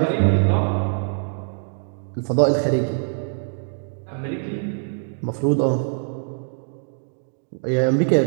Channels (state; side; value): silent; left; digital silence